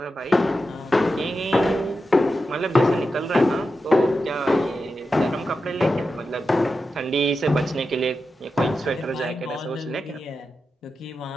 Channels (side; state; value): both; normal; correlation 0.90